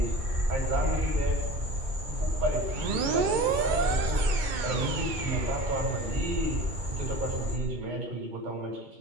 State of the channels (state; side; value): late; left; 2.2 ms